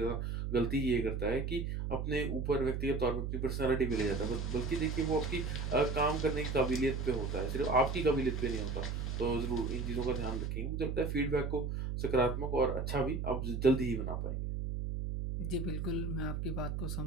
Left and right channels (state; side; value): noise; right; hum, 2 dB below the sound